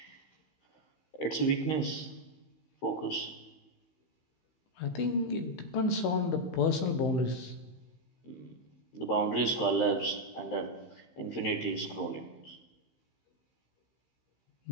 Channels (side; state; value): right; late; 15 ms